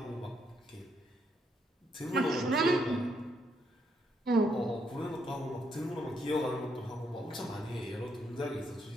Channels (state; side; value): normal; both; correlation 0.75